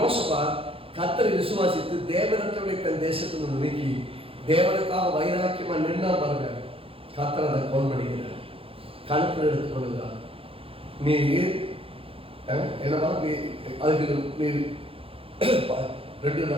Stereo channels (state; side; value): late; left; 0.27 ms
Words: கர்த்தரை விசுவாசித்து தேவனற்றவனை தன் தேசத்திலிருந்து நீக்கி தேவனுக்காக வைராக்கியமா நின்னா பாருங்க, கர்த்தர் அதை கோல் பண்ணுகிறார், கணக்கில் எடுத்துக் கொள்கிறார். நீ என்னவா நீ அதுக்கு நீ